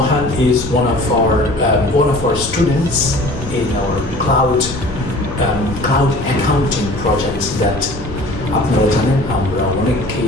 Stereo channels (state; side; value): noise; left; rumble, 12 dB below the sound